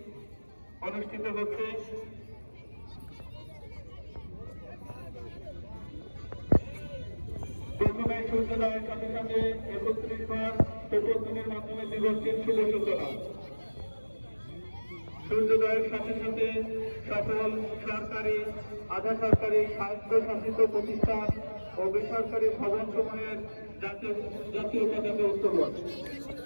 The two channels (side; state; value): both; inverted; correlation -1.00